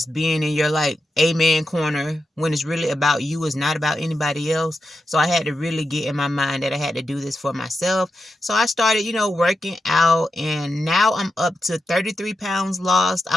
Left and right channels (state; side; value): normal; both; correlation 0.88